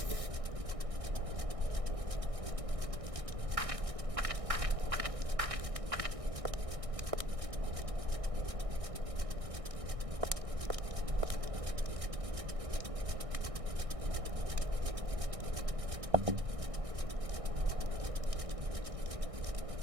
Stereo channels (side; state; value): left; late; 1.6 ms